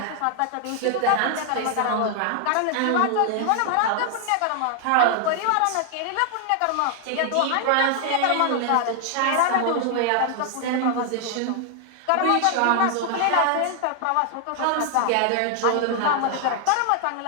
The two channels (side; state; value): both; different; correlation 0.00